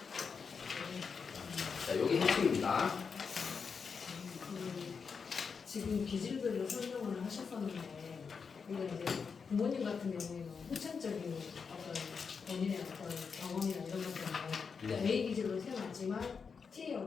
자, 여기 핵심입니다. 지금 기질별로 설명을 하셨었는데, 근데 이제 부모님 같은 경우에는 후천적인 어떤 본인의 어떤 경험이나 이런 것 때문에 네.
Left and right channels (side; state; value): right; quieter; 5.7 dB